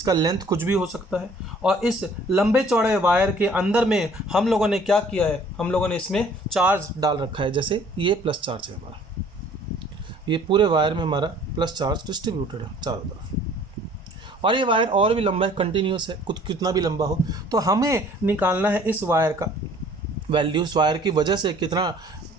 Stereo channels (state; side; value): normal; both; correlation 0.54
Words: लेंथ कुछ भी हो सकता है और इस लंबे चौड़े वायर के अंदर में हम लोगों ने क्या किया है? हम लोगों ने इसमें चार्ज डाल रखा है। जैसे ये प्लस चार्ज है हमारा, ये पूरे वायर में हमारा प्लस चार्ज डिस्ट्रीब्यूटेड है चारों तरफ, और ये वायर और भी लंबा है, कंटिन्यूस है, कुछ कितना भी लंबा हो। तो हमें निकालना है इस वायर का वैल्यू, इस वायर की वजह से कितना